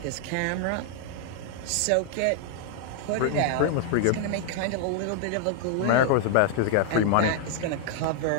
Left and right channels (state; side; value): different; both; correlation 0.00